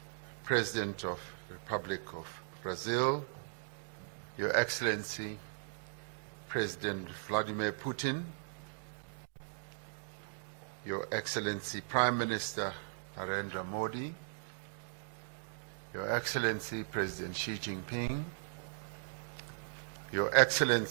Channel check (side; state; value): left; silent; digital silence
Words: President of the Republic of Brazil, Your Excellency President Vladimir Putin, Your Excellency Prime Minister Narendra Modi, Your Excellency President Xi Jinping, Your